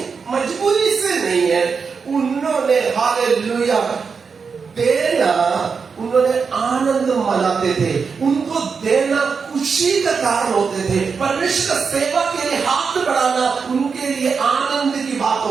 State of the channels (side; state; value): left; quieter; 5.5 dB